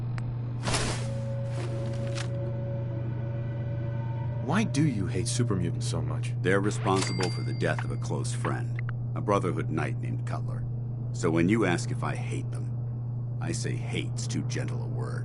Why do you hate super mutants so much? They're responsible for the death of a close friend, a Brotherhood knight named Cutler. So when you ask if I hate them, I say hate's too gentle a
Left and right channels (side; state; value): both; identical; correlation 1.00